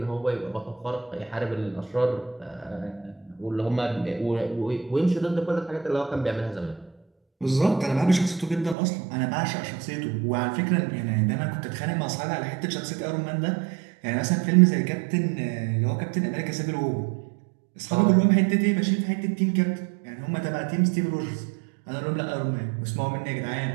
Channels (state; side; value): drops out; left; at 8.8 s